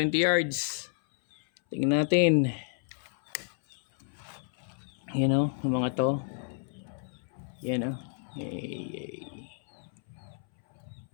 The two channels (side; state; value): right; silent; 57 dB below the other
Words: yards. Tingnan natin. Yung mga to. Yan oh. Yay.